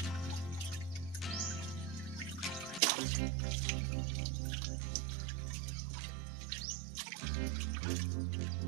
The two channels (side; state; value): left; drops out; at 2.8 s